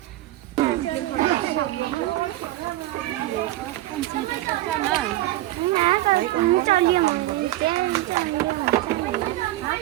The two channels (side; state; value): left; quieter; 16.3 dB